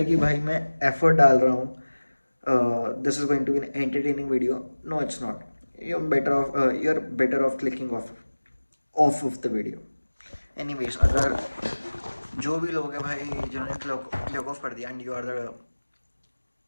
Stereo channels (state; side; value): inverted; both; correlation -1.00